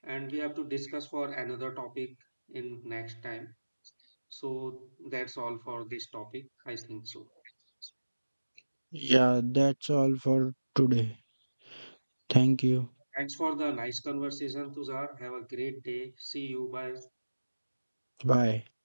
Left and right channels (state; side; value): inverted; both; correlation -1.00